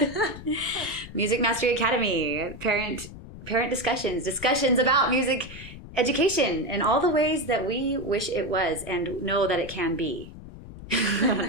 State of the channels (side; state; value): left; noise; rumble, 14 dB below the sound